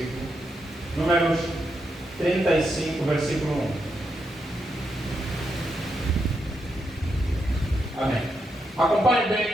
Números 35, versículo 1. Amém. Acompanhe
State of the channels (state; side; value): normal; both; correlation 0.82